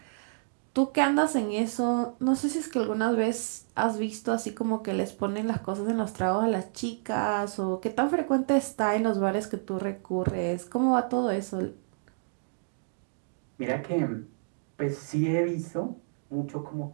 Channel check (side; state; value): left; silent; digital silence